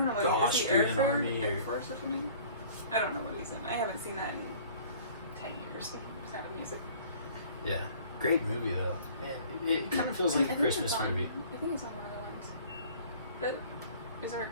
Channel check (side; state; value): both; inverted; correlation -0.50